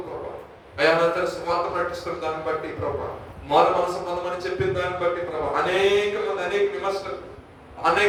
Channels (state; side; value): identical; both; correlation 1.00